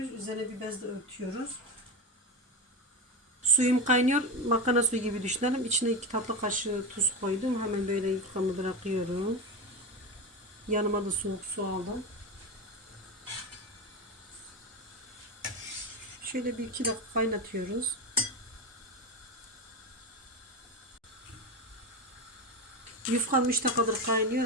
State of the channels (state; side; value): normal; both; correlation 0.19